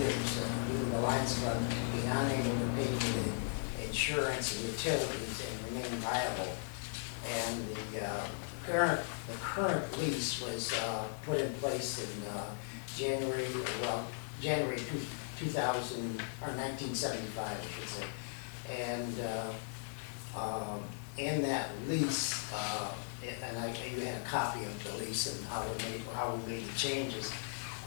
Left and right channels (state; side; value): silent; right; digital silence